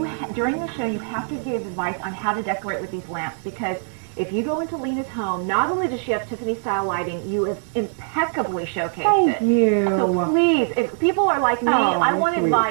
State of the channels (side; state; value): left; silent; 58 dB below the other